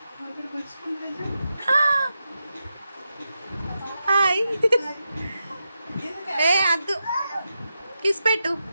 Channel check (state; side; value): inverted; both; correlation -0.88